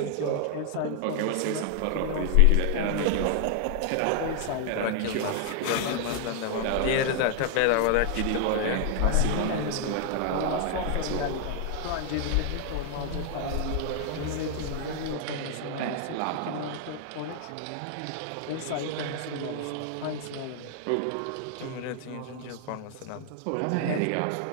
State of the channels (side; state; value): both; different; correlation 0.00